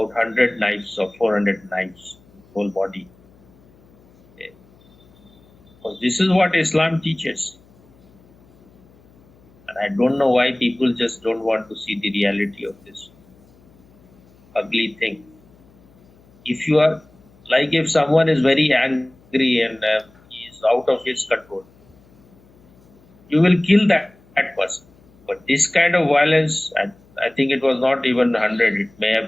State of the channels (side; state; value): left; noise; hum, 29 dB below the sound